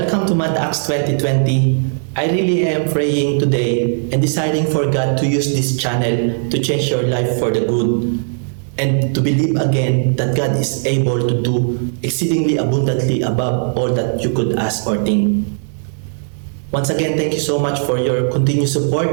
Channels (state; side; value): silent; left; digital silence